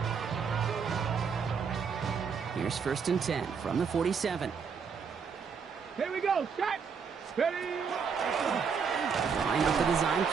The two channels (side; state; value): left; quieter; 6.1 dB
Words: Here's 1st and 10 from the 47. Here we go. Set. Ready. Line up the design